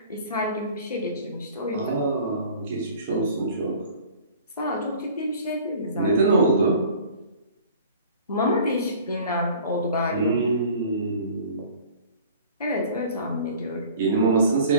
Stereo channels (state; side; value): inverted; both; correlation -0.47